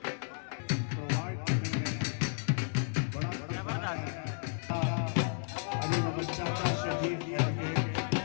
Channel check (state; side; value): silent; right; digital silence